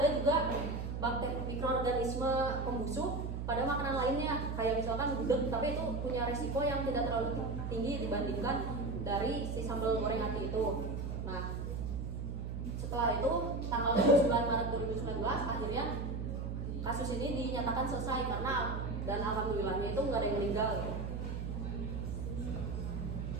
juga bakteri mikroorganisme pembusuk pada makanan lainnya, kayak misalkan gudeg, tapi itu punya risiko yang tidak terlalu tinggi dibandingkan dari si sambal goreng ati itu. Nah, setelah itu tanggal 9 Maret 2019 akhirnya kasus ini dinyatakan selesai karena, dan alhamdulillahnya itu nggak ada yang meninggal.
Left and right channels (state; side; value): noise; right; hum, 4 dB below the sound